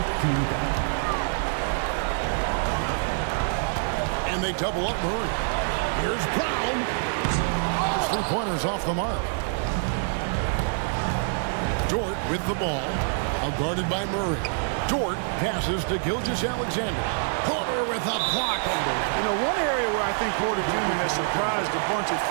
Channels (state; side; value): silent; left; digital silence